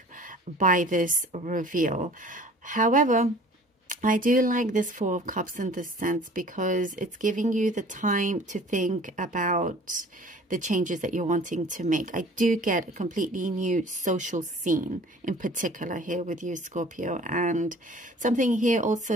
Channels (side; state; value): both; normal; correlation 0.48